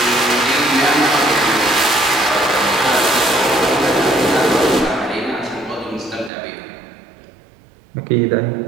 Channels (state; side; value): drops out; left; at 6.3 s